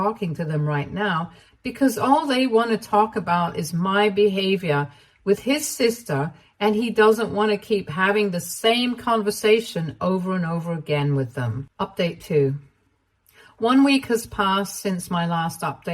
to them right now because all they want to talk about is my behavior with his sister, and he doesn't want to keep having the same conversation over and over again with them. Update 2. 1 week has passed since my last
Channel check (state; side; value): identical; both; correlation 1.00